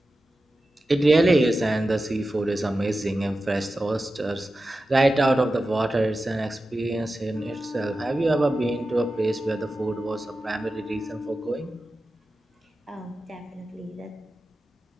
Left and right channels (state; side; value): normal; both; correlation 0.93